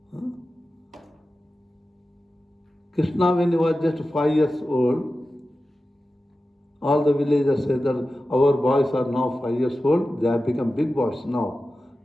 Krishna, when he was just 5 years old, all the villagers said that our boys are now 5 years old, they have become big boys now.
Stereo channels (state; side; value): normal; both; correlation 0.94